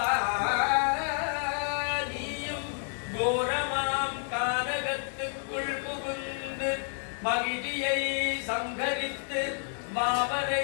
நீயும் கோரமாம் கானகத்துக்குள் புகுந்து மகிழியை சங்கரித்து மாவரை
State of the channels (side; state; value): right; silent; 58 dB below the other